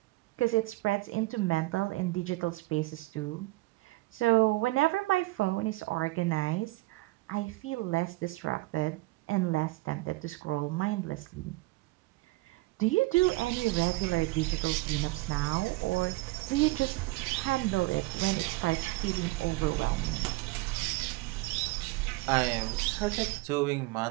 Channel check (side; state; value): left; quieter; 20.7 dB